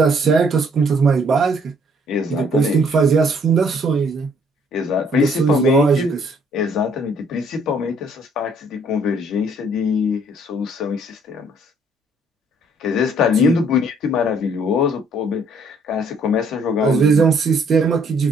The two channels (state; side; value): normal; both; correlation 0.63